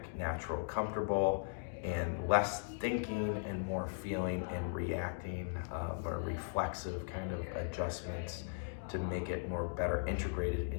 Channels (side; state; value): right; silent; digital silence